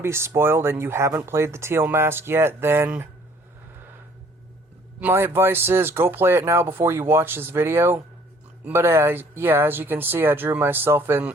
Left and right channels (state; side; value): normal; both; correlation 0.58